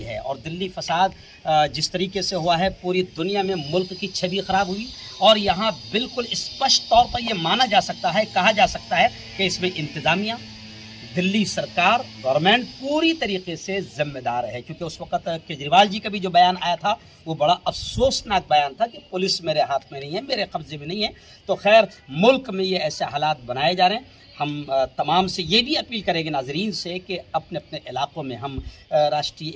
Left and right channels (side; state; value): both; identical; correlation 1.00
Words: ہے اور دلی فساد جس طریقے سے ہوا ہے پوری دنیا میں ملک کی چھوی خراب ہوئی اور یہاں بالکل اسپشٹ طور پر یہ مانا جا سکتا ہے, کہا جا سکتا ہے کہ اس میں انتظامیہ, دلی سرکار, گورنمنٹ پوری طریقے سے ذمہ دار ہے. کیونکہ اس وقت کیجریوال جی کا بھی جو بیان آیا تھا وہ بڑا افسوسناک بیان تھا کہ پولیس میرے ہاتھ میں نہیں ہے, میرے قبضے میں نہیں ہے. تو خیر ملک میں یہ ایسے حالات بنائے جا رہے ہیں. ہم تمام سے یہ بھی اپیل کریں گے ناظرین سے کہ اپنے اپنے علاقوں میں ہم راشٹری